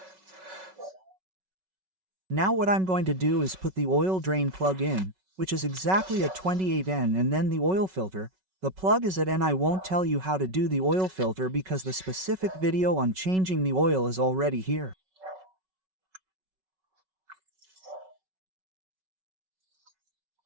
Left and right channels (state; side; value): late; left; 5.3 ms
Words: Now what I'm going to do is put the oil drain plug in, which is exactly at 28N, and then the oil filter. The plug is at N. I won't tell you how to do the oil filter because the specific video on changing the oil is already here.